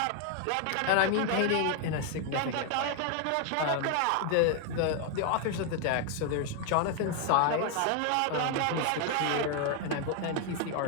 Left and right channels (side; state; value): both; different; correlation 0.00